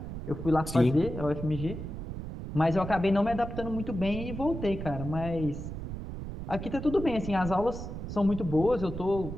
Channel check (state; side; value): noise; right; rumble, 7 dB below the sound